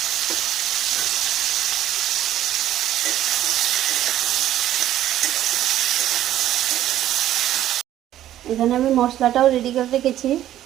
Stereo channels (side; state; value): left; quieter; 12.5 dB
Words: এখানে আমি মশলাটাও রেডি করে রেখেছি।